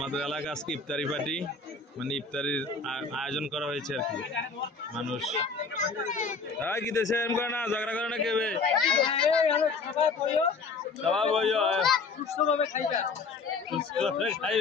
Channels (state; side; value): quieter; right; 4.4 dB